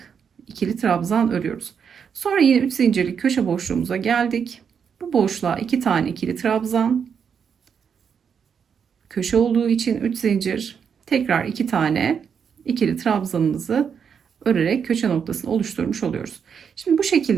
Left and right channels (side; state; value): left; quieter; 7.0 dB